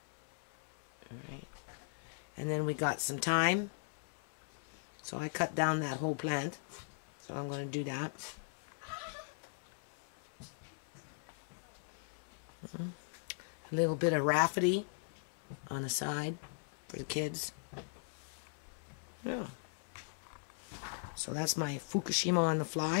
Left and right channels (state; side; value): silent; right; 52 dB below the other